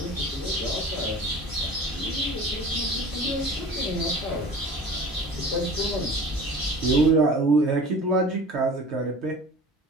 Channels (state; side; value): normal; both; correlation 0.40